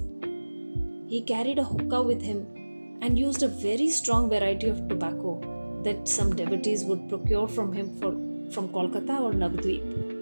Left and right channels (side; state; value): both; inverted; correlation -1.00